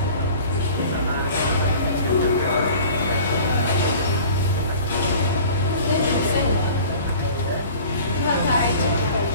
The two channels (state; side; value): inverted; both; correlation -0.44